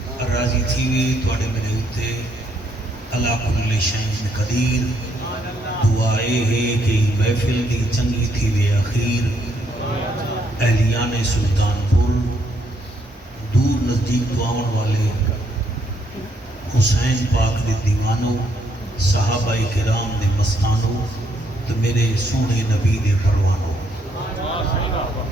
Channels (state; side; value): normal; both; correlation 0.72